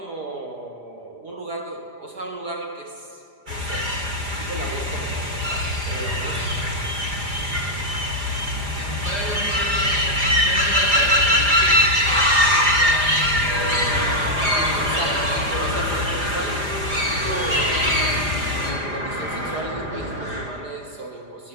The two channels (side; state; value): left; late; 4.9 ms